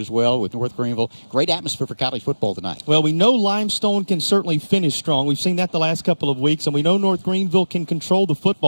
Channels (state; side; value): inverted; both; correlation -1.00